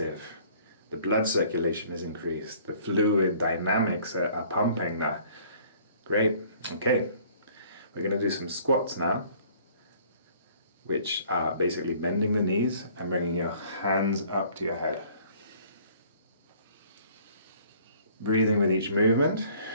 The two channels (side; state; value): both; inverted; correlation -0.56